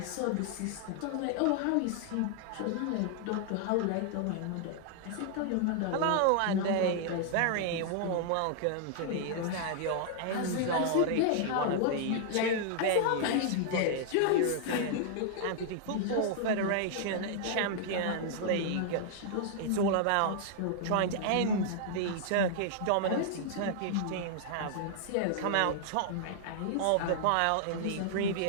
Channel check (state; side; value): different; both; correlation -0.01